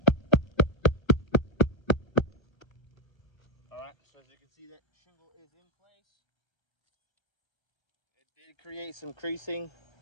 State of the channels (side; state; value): right; late; 1.2 ms